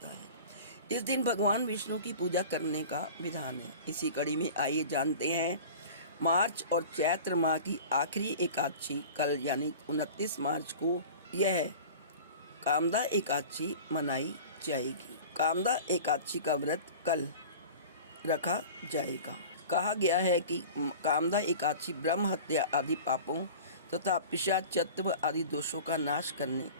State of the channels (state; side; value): inverted; both; correlation -0.38